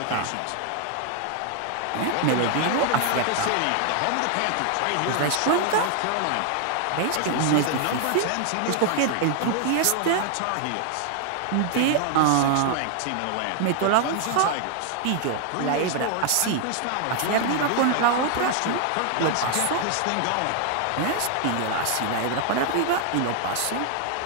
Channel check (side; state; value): both; different; correlation 0.00